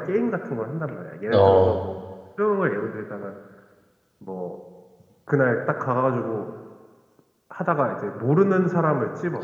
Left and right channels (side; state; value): both; identical; correlation 1.00